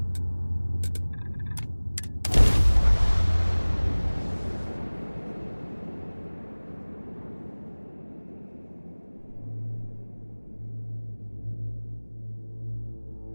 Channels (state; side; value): inverted; both; correlation -1.00